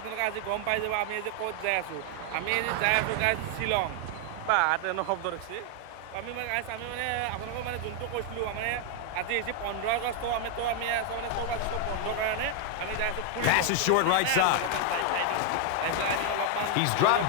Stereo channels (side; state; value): both; different; correlation 0.00